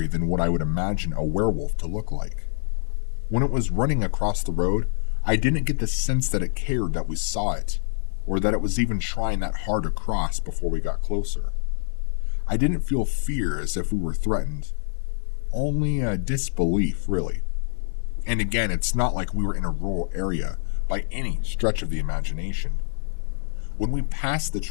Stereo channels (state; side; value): silent; right; 62 dB below the other